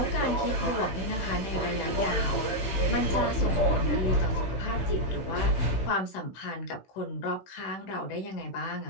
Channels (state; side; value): late; right; 16 ms